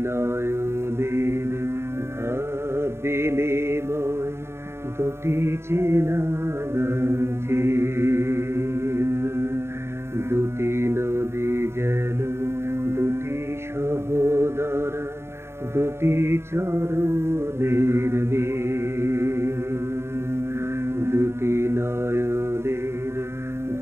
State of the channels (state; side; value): late; left; 0.12 ms